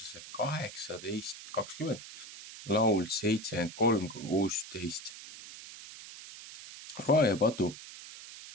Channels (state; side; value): noise; right; hiss, 14 dB below the sound